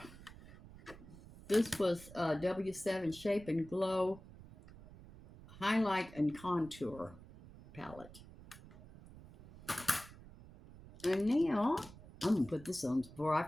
this was W7 Shape and Glow Highlight and Contour palette. And now, I'm going to put this on before I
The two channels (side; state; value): right; noise; rumble, 18 dB below the sound